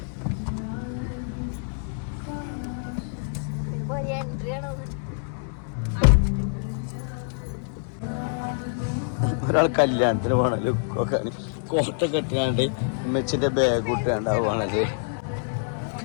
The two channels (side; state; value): right; silent; digital silence